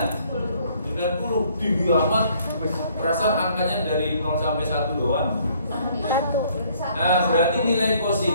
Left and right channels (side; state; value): both; inverted; correlation -0.62